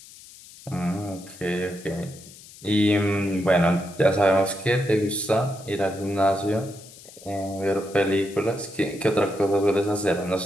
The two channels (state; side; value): noise; left; hiss, 20 dB below the sound